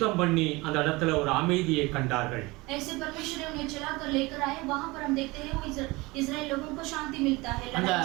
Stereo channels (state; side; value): quieter; left; 23.0 dB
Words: பண்ணி அந்த இடத்துல ஒரு அமைதியை கண்டார்கள். ऐसे परमेश्वर ने उन्हें चलाकर लेकर आए. वहां पर हम देखते हैं वो इस्राएल लोगों को शांति मिलता है. அந்த